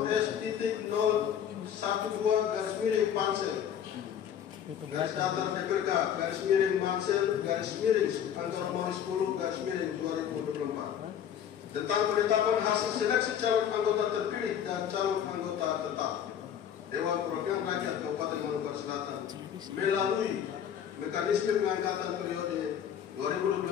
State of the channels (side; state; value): right; quieter; 9.1 dB